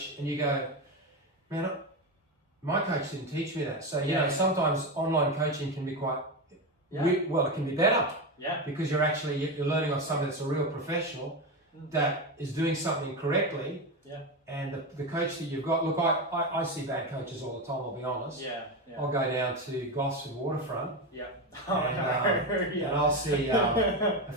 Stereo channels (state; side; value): normal; both; correlation 0.16